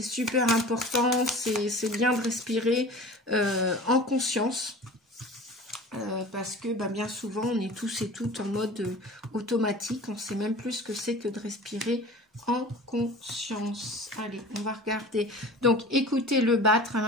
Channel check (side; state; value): both; normal; correlation 0.40